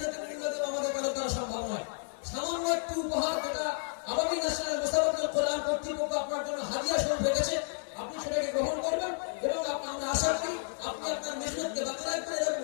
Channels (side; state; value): right; silent; 55 dB below the other